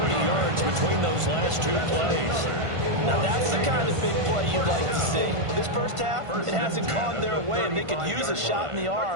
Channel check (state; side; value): late; left; 1.5 ms